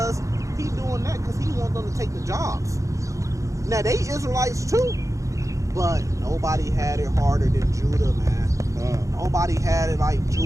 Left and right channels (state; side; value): late; left; 0.15 ms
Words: He doing that because he wants them to take the jobs. Now, they Israelites too, but nobody had it harder than Judah, man. Nobody had it like